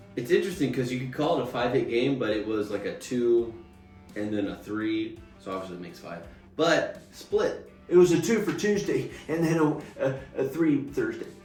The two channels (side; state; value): both; identical; correlation 1.00